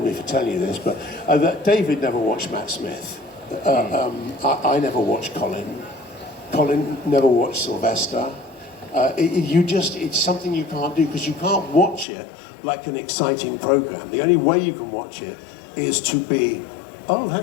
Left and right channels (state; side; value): drops out; right; at 12.1 s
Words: me for telling you this, but that David never watched Matt Smith. I never watched Colin. Colin never watched Sylvester. It's something you can't do because you can't watch it like an exciting program. The only way you can watch it is to be, oh,